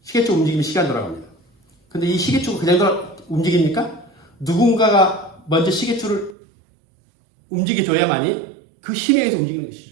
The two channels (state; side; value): drops out; left; at 6.4 s